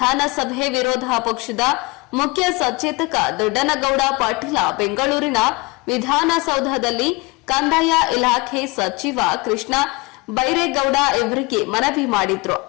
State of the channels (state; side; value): quieter; right; 25.2 dB